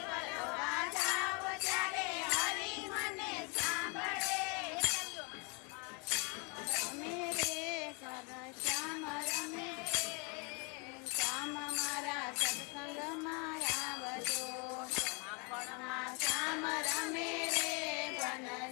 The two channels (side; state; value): right; quieter; 31.6 dB